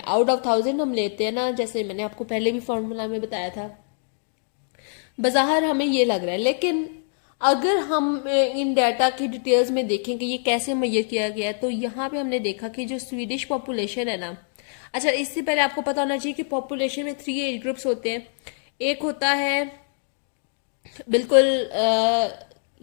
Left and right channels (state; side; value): silent; right; digital silence